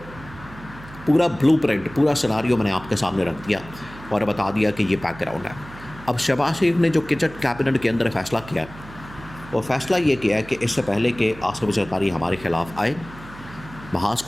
پورا بلو پرنٹ، پورا سیناریو میں نے آپ کے سامنے رکھ دیا اور بتا دیا کہ یہ بیک گراؤنڈ ہے۔ اب شہباز شریف نے جو کچن کیبنٹ کے اندر فیصلہ کیا ہے، وہ فیصلہ یہ کیا ہے کہ اس سے پہلے کہ آصف زرداری ہمارے خلاف آئے، محاذ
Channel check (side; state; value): right; noise; hum, 17 dB below the sound